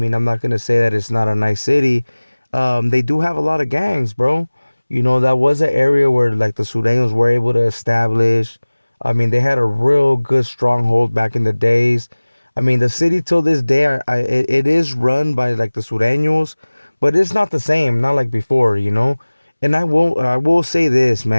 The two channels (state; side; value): inverted; both; correlation -1.00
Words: I'm not going to say that it's not a nice city, they do have a lot of gangs, bro. That was an area where like the Surenos were able to establish. I mean, they had a real good stronghold back in the days. I mean, the city till this day, it is run by like the Sureños, but it's not the same, not like before. And I will say this,